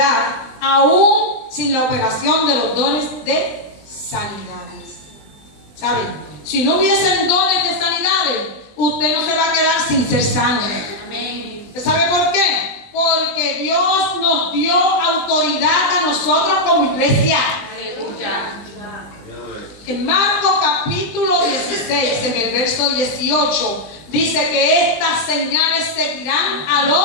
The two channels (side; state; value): right; late; 20 ms